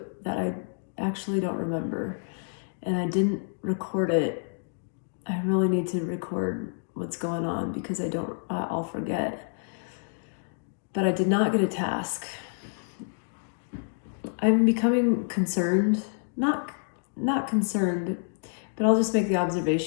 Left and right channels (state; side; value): silent; right; digital silence